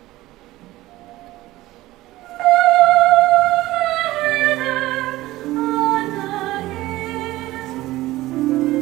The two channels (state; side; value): quieter; left; 17.3 dB